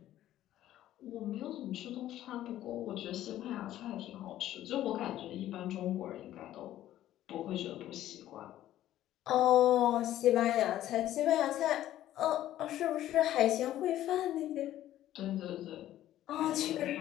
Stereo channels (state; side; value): quieter; right; 13.2 dB